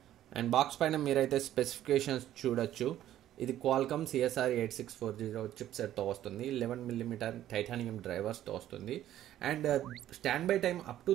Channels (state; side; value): quieter; left; 12.4 dB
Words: అండ్ బాక్స్ పైన మీరైతే స్పెసిఫికేషన్స్ చూడొచ్చు. ఇది క్వాల్కమ్ CSR 8640 చిప్సెట్తో వస్తుంది. 11mm టైటానియం డ్రైవర్స్తో వస్తుంది. And stand by time up to